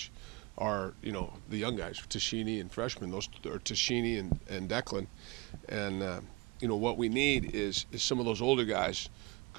are the young guys, Tashini and freshmen. Those are Tashini and Declan, and what we need is some of those older guys.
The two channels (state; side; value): quieter; left; 24.6 dB